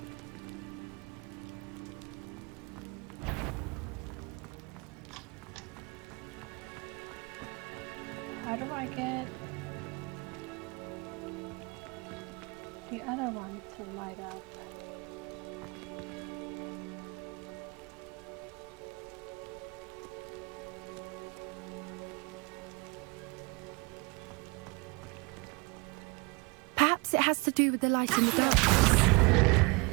How do I get the other one to light up? Perhaps it has to do with the light and the darkness.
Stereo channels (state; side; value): quieter; left; 28.7 dB